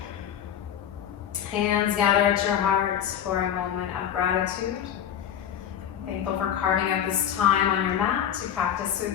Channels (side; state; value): right; quieter; 9.7 dB